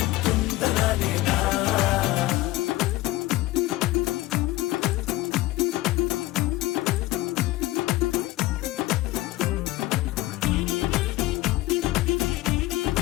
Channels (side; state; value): right; quieter; 17.9 dB